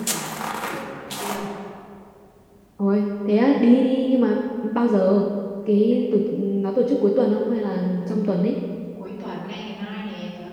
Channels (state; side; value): identical; both; correlation 1.00